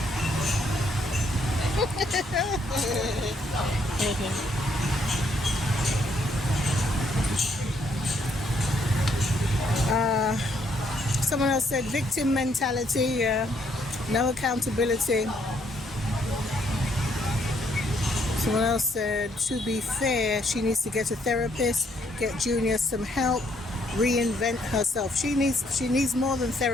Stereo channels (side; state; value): both; normal; correlation 0.70